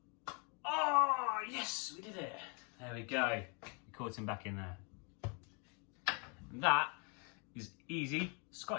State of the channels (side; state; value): right; quieter; 34.9 dB